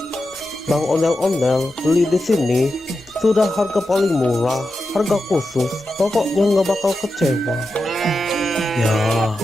Bang Ondel-Ondel beli di sini sudah harga paling murah, harga khusus, pokoknya nggak bakal kecewa. Ya.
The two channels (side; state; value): both; normal; correlation 0.90